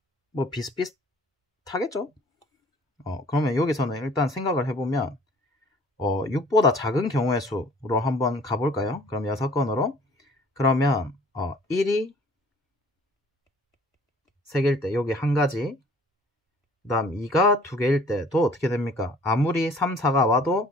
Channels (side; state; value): both; normal; correlation 0.53